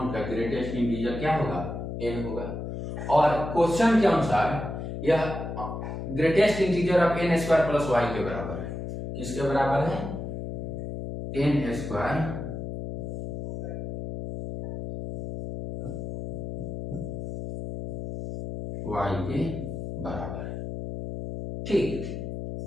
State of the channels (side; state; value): left; noise; hum, 6 dB below the sound